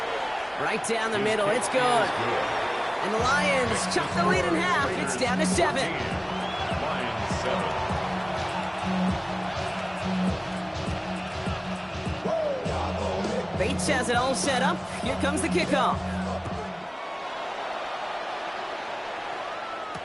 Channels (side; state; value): both; identical; correlation 1.00